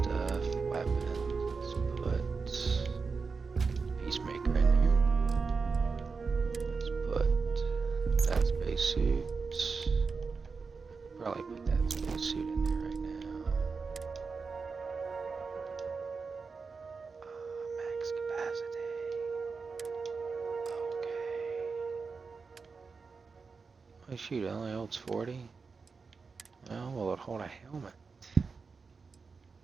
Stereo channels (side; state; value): left; quieter; 4.8 dB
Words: weapons. Let's put Peacemaker in here. Let's put that spacesuit. Probably put that spacesuit in there right now. Max capacity. Okay. Oh shoot, it only holds 40? Well, will it hold a helmet?